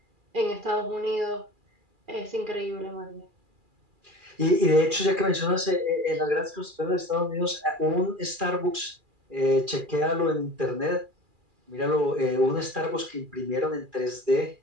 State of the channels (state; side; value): late; left; 2.4 ms